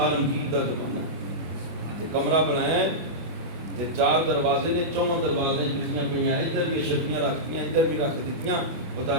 دا زمانہ تے کمرہ بنایا ہے تے 4 دروازے نے، 4 دروازے جتیاں پہ ادھر بھی شکیاں رکھتیاں ادھر بھی رکھ دیتیاں، وہ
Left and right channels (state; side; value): late; left; 25 ms